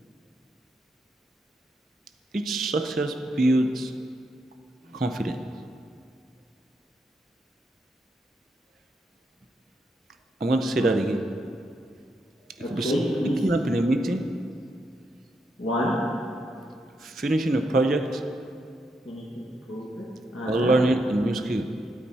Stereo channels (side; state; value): both; normal; correlation 0.80